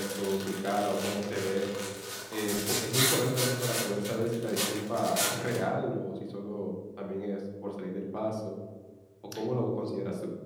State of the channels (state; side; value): identical; both; correlation 1.00